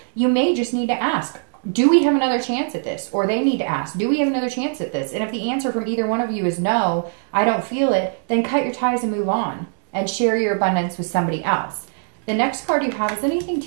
You may just need to ask, do we have another chance at this? Or they need to ask, do we have another chance at this? And if the answer from either one of you is no, I don't feel it, then cut your ties and move on and share your abundance with somebody else. The next card you have is anything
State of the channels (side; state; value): left; silent; digital silence